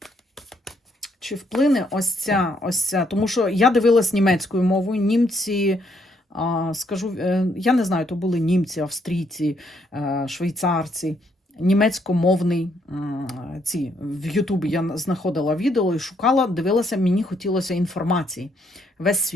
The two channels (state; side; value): normal; both; correlation 0.72